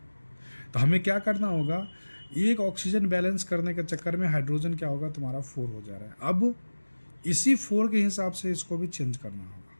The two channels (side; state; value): both; inverted; correlation -1.00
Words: तो हमें क्या करना होगा, एक ऑक्सीजन बैलेंस करने के चक्कर में हाइड्रोजन क्या होगा तुम्हारा 4 हो जा रहा है। अब इसी 4 के हिसाब से इसको भी चेंज करना होगा,